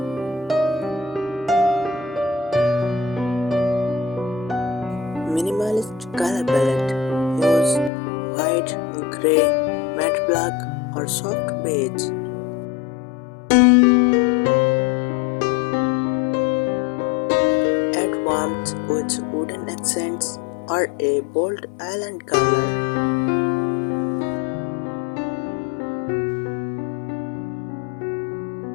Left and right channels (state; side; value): drops out; right; at 7.9 s